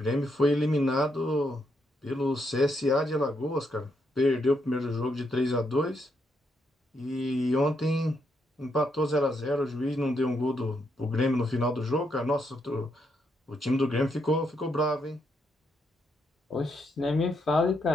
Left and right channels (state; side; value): normal; both; correlation 0.78